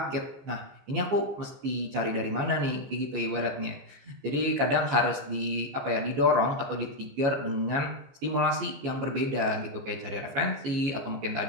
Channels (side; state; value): left; late; 14 ms